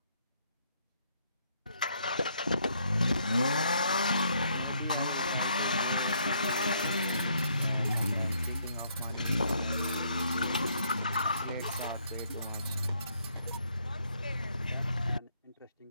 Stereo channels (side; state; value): both; inverted; correlation -0.70